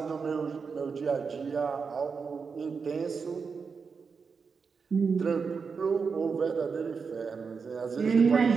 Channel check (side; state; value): left; quieter; 5.4 dB